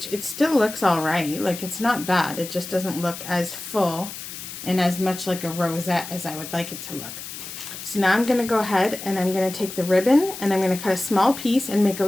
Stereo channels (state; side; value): noise; left; hiss, 10 dB below the sound